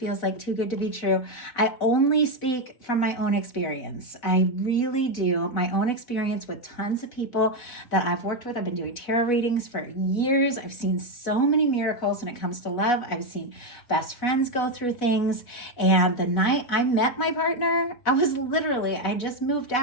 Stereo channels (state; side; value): late; right; 4.1 ms